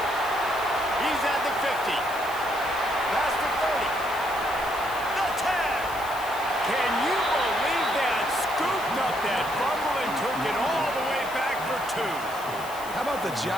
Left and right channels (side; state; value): left; noise; hiss, 15 dB below the sound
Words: He's at the 50. Past the 30. The 10. Can you believe that? Scooped up that fumble and took it all the way back for 2. How about the